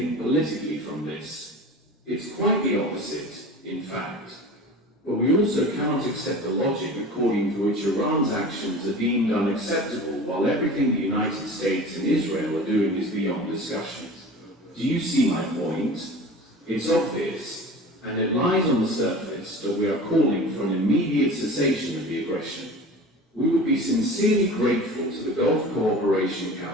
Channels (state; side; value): normal; both; correlation 0.37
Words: politically from this. It's quite the opposite, in fact. But we also cannot accept the logic according to which Iran's actions are deemed unacceptable while everything the United States and Israel are doing is beyond discussion. Do you see my point? It's obvious, and it lies on the surface that we are calling for an immediate cessation of the aggression. We would be sincerely grateful to the Gulf Cooperation